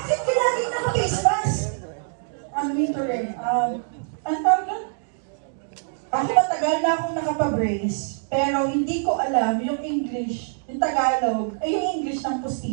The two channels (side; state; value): left; silent; digital silence